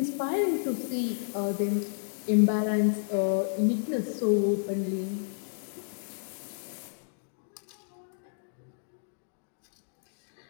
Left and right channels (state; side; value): silent; right; digital silence